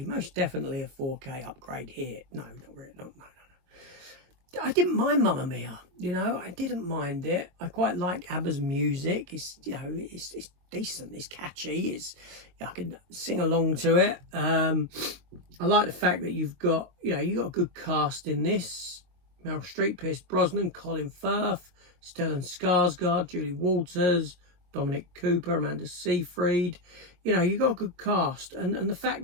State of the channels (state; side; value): late; left; 22 ms